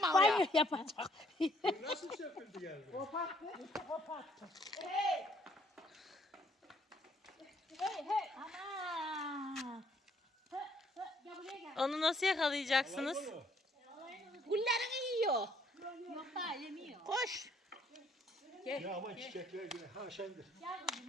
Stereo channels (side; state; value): both; normal; correlation 0.66